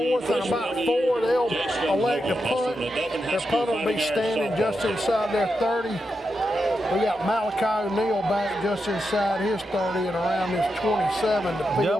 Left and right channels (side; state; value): both; normal; correlation 0.87